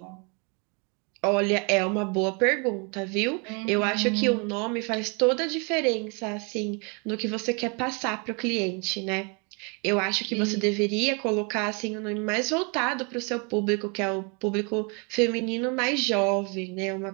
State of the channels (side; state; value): left; quieter; 34.0 dB